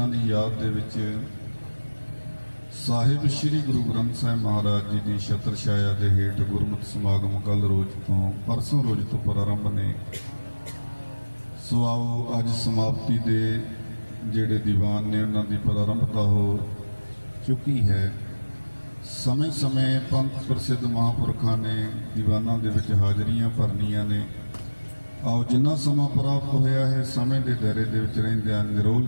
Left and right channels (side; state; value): both; inverted; correlation -1.00